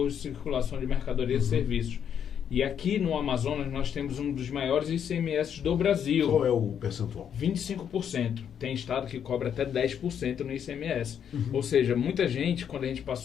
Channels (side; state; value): right; quieter; 8.5 dB